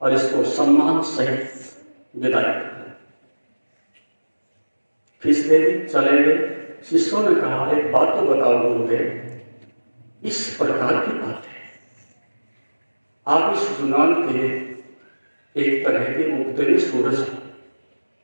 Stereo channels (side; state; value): both; inverted; correlation -1.00